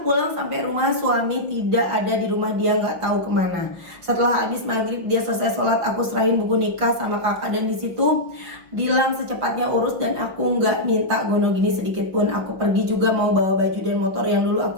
pulang sampai rumah, suami tidak ada di rumah, dia gak tahu kemana. Setelah habis maghrib dia selesai sholat, aku serahin buku nikah sama kakak dan di situ bilang secepatnya urus dan aku nggak minta gono gini sedikit pun. Aku pergi juga mau bawa baju dan motor yang dulu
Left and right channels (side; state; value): left; late; 5.6 ms